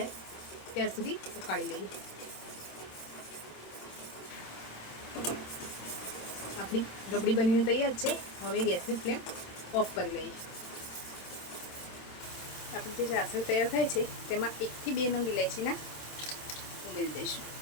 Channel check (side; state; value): right; late; 26 ms